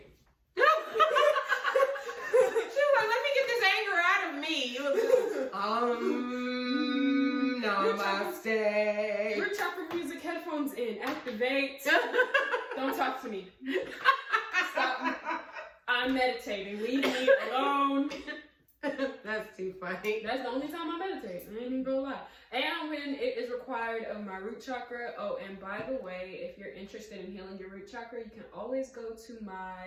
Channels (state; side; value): identical; both; correlation 1.00